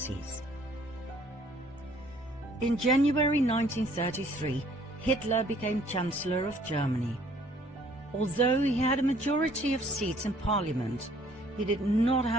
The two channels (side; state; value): both; normal; correlation 0.59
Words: In January 1933, Hitler became Chancellor of Germany. Although he had a majority of seats in Parliament, he did not